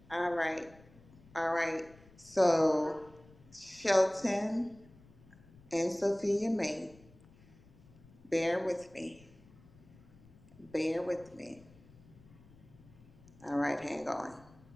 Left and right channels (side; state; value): left; noise; rumble, 24 dB below the sound